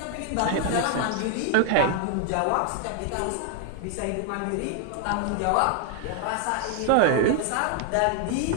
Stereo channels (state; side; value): different; both; correlation 0.00